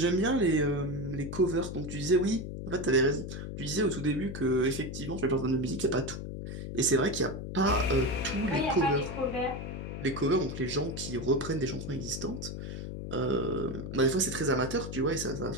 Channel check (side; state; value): left; noise; hum, 7 dB below the sound